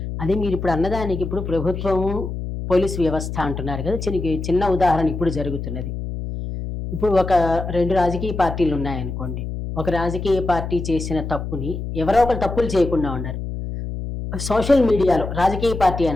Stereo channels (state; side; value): noise; left; hum, 6 dB below the sound